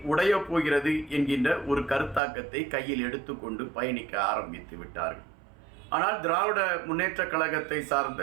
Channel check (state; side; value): drops out; left; at 2.2 s